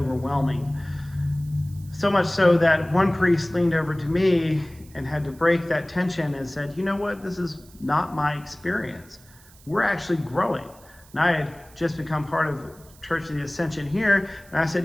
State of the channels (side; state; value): right; noise; hiss, 25 dB below the sound